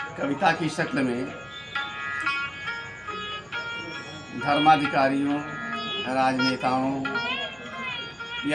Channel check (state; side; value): noise; right; hum, 29 dB below the sound